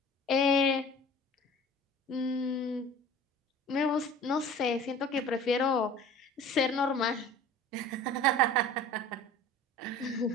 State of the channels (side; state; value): both; normal; correlation 0.43